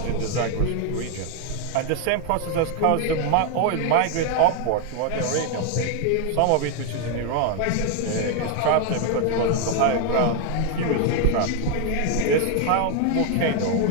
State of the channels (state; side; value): different; both; correlation 0.01